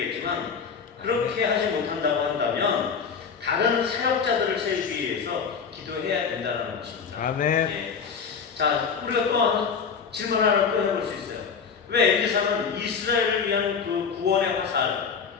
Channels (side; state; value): right; quieter; 6.2 dB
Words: 그렇게 하지 못한다고 한다면 다른 사역자들을 세우기 위해서 기도해야 된다는 것입니다. 아멘. 예. 자, 우리가 또 질문 하나 또 해볼 수 있어요. 왜 엘리사는 이스라엘을 위한 그 구원의 화살,